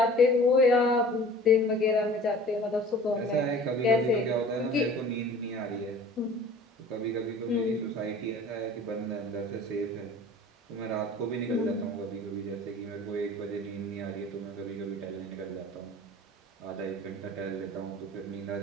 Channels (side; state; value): both; normal; correlation 0.44